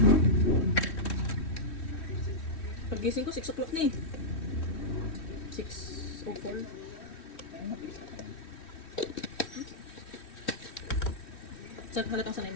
Pagising ko, 6 o'clock na eh. 6:04. Saan halatang sanay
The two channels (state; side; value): late; right; 3.1 ms